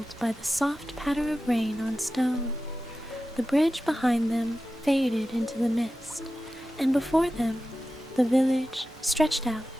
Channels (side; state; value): both; normal; correlation 0.93